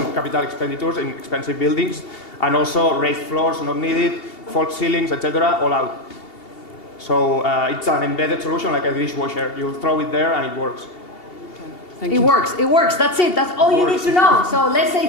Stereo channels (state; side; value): late; right; 2.8 ms